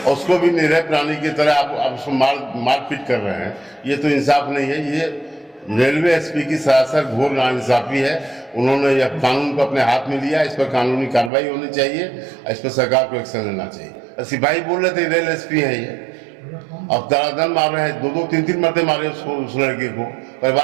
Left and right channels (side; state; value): left; drops out; at 11.3 s